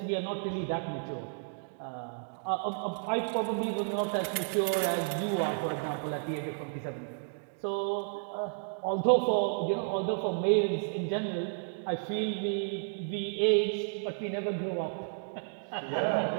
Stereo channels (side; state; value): left; silent; digital silence